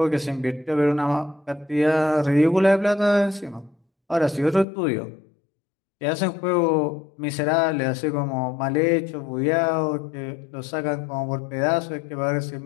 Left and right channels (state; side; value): drops out; right; at 4.7 s